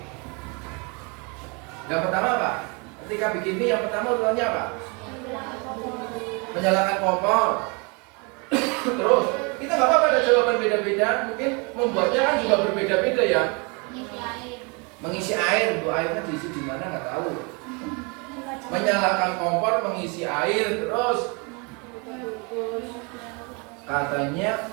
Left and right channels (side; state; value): left; quieter; 31.7 dB